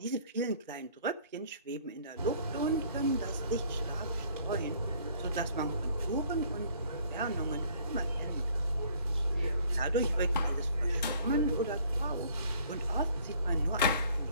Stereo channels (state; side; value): inverted; both; correlation -0.57